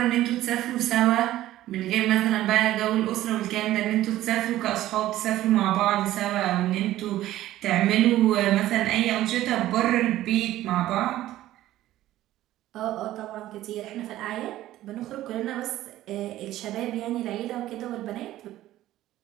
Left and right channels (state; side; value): quieter; left; 14.5 dB